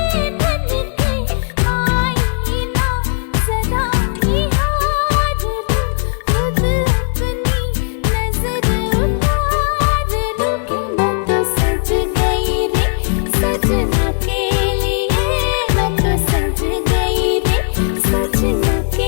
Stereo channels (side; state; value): right; silent; digital silence